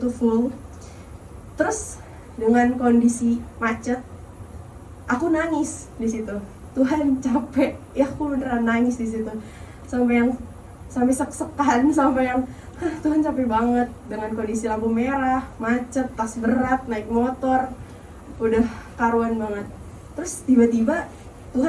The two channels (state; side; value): identical; both; correlation 1.00